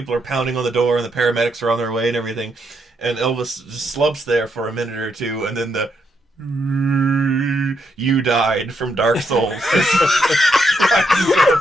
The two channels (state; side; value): normal; both; correlation 0.78